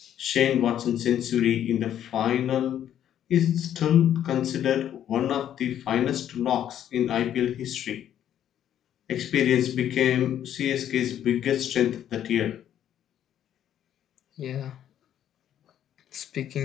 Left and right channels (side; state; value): right; quieter; 10.5 dB